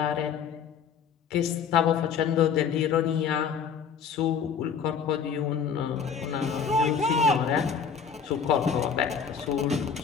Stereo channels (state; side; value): quieter; right; 6.7 dB